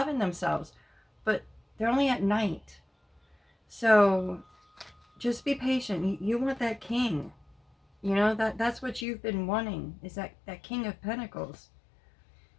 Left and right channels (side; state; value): right; drops out; at 9.1 s